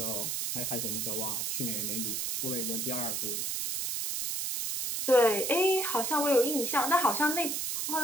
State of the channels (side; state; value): right; noise; hiss, 1 dB below the sound